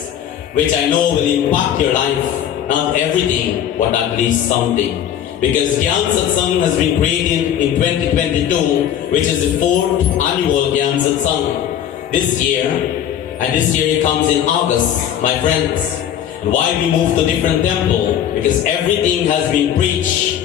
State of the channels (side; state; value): right; quieter; 10.0 dB